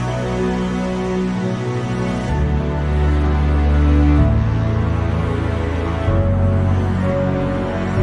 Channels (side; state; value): both; identical; correlation 1.00